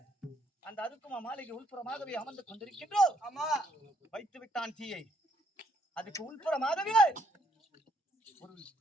அந்த அருக்குமா மாளிகை உள்புறமாகவே அமர்ந்து கொண்டிருக்கின்றோம். ஆமா. வைத்து விட்டான் தீயை. அதுக்கு உள்புறமாகவே ஒரு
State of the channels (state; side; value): normal; both; correlation 0.70